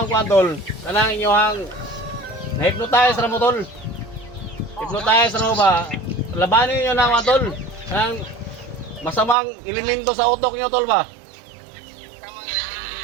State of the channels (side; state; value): left; drops out; at 9.3 s